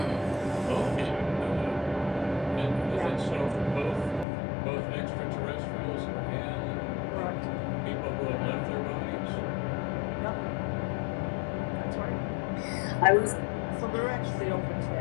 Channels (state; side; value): drops out; right; at 4.2 s